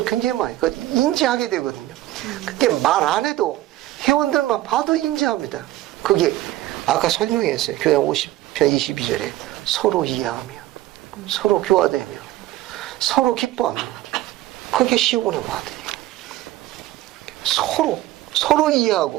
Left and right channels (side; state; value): left; quieter; 15.7 dB